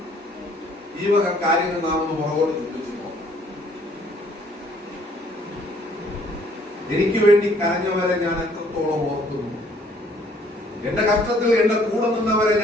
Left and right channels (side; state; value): both; normal; correlation 0.61